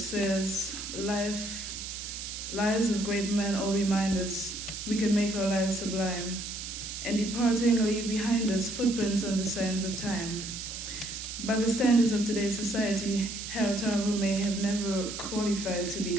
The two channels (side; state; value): right; noise; hiss, 7 dB below the sound